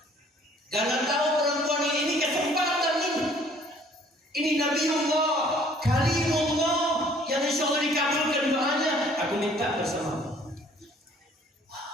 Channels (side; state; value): both; normal; correlation 0.57